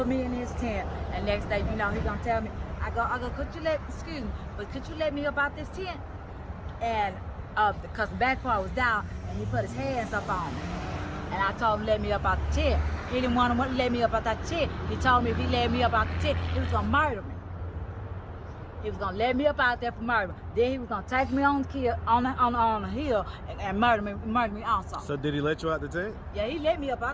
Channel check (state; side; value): identical; both; correlation 1.00